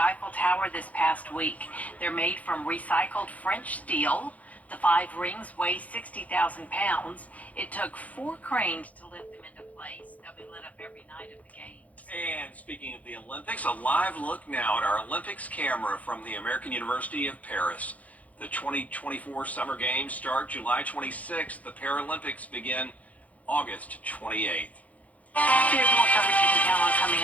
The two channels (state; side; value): late; right; 0.071 ms